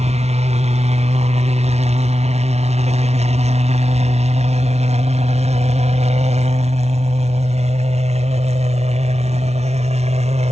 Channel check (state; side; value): late; left; 0.31 ms